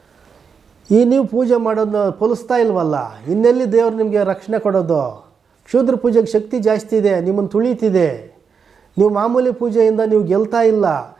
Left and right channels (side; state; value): left; quieter; 6.1 dB